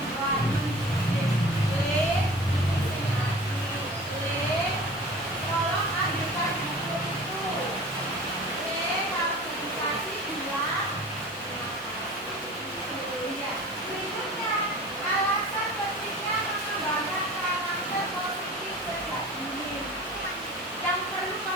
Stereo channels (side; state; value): both; normal; correlation 0.40